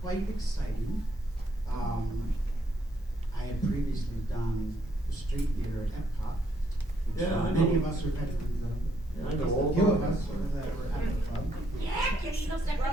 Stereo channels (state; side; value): normal; both; correlation 0.73